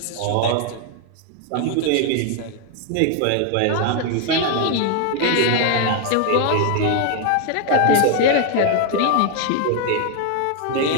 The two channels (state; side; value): different; both; correlation 0.00